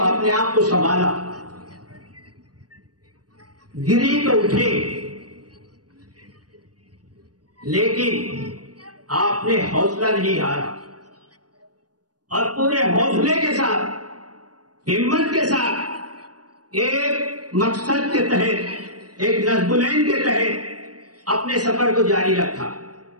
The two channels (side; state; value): left; late; 0.68 ms